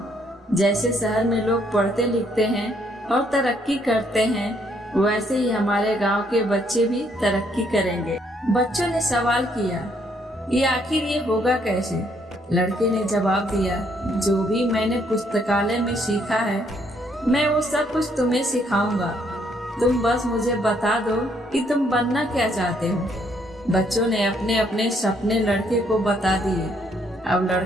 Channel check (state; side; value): normal; both; correlation 0.70